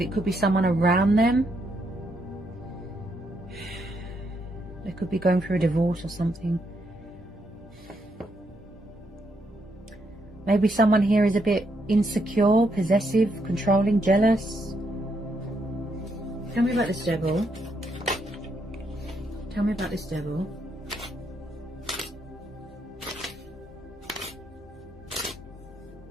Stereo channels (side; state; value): both; normal; correlation 0.77